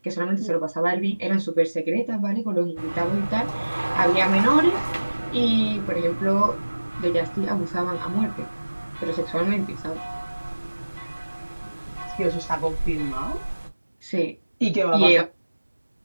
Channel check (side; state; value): both; inverted; correlation -1.00